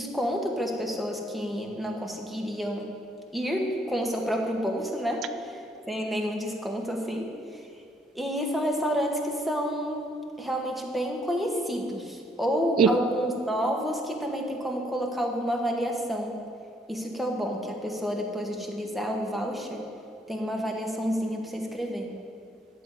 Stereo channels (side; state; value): both; normal; correlation 0.69